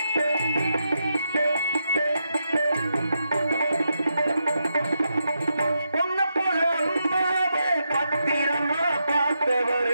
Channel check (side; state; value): both; inverted; correlation -0.84